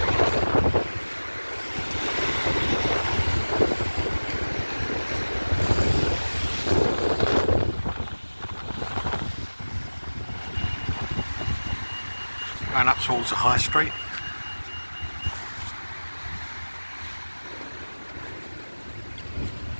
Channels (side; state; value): both; inverted; correlation -1.00